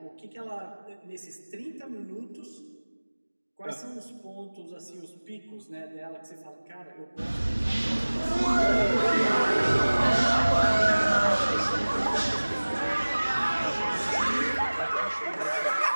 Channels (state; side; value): inverted; both; correlation -1.00